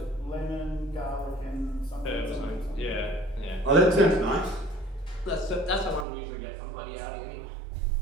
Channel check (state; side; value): drops out; left; at 6.1 s